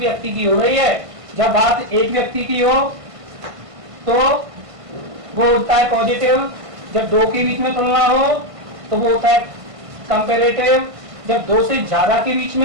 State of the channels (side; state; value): left; late; 1.5 ms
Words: की हो रही है। जब बात एक व्यक्ति की हो तो वो होता है पॉजिटिव। जब दो के बीच में तुलना हो तो वो होता है कंपैरेटिव। जब दो से ज्यादा के बीच